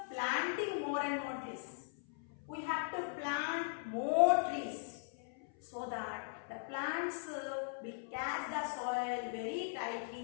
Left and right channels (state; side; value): silent; right; 52 dB below the other